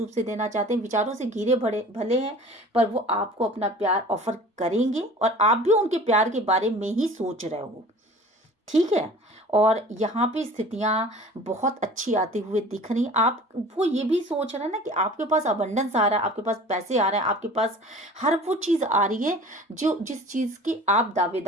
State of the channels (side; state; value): both; normal; correlation 0.44